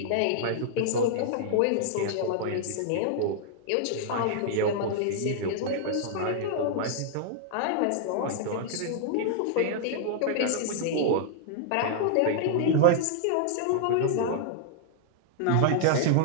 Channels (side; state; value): both; different; correlation -0.01